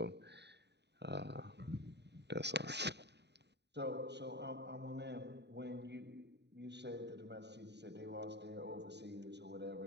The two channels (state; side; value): late; left; 0.50 ms